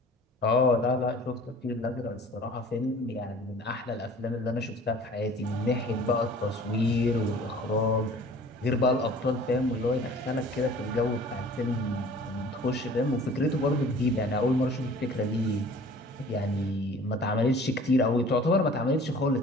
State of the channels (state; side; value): normal; both; correlation 0.47